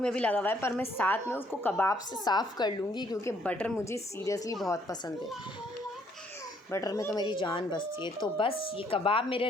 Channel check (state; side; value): normal; both; correlation 0.66